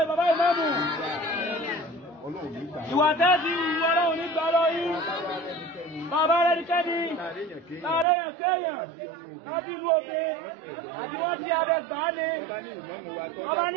bàbá ìmáàmù. Ọlọ́run ní gbà. Ìwà tẹ́ẹ̀dì ìwọ Ọlọ́run ní gbà lọ yín. Bàbá rẹ̀ ní kẹ́ni. Láàrẹ̀ yàn kéèyàn. Láti inú òkè. Àbí wọ́n ti abẹ gbà á ni. Ọba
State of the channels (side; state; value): left; drops out; at 8.1 s